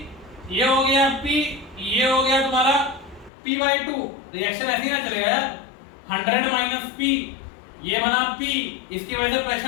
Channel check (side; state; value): right; drops out; at 3.3 s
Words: ये हो गया पी, ये हो गया तुम्हारा p/2। रिएक्शन ऐसे ही ना चलेगा यार। 100 माइनस पी, ये बना पी, इसकी वजह से